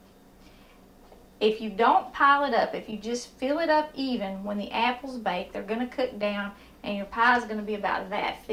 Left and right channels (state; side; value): identical; both; correlation 1.00